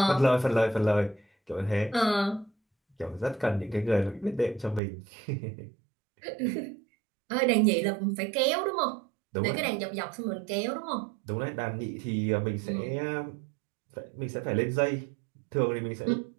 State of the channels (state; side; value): drops out; left; at 4.8 s